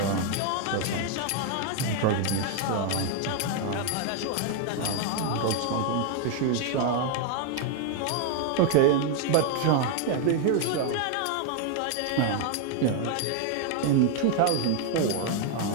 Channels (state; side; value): different; both; correlation 0.00